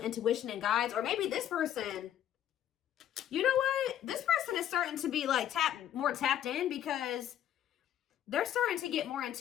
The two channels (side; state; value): right; quieter; 11.0 dB